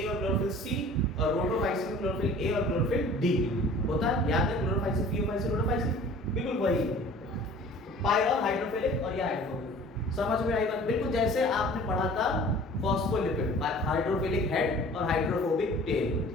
और क्लोरोफिल सी, और रोटोफाइसिन में क्लोरोफिल ए और क्लोरोफिल डी होता है। याद है? क्लोरोफाइसिन, थियोफाइसिन, रोटोफाइसिन, बिल्कुल वही। पायरॉल हाइड्रोफिलिक और ये हाइड्रोफोबिक। समझ में आई बात? बिल्कुल जैसे आपने पढ़ा था फॉस्फोलिपिड, हाइड्रोफिलिक हेड और हाइड्रोफोबिक टेल,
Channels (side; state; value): both; normal; correlation 0.47